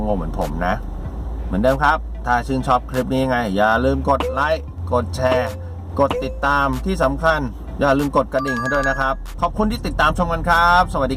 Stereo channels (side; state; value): both; identical; correlation 1.00